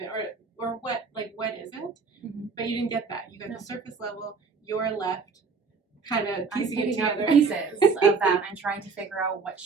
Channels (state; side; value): quieter; left; 4.9 dB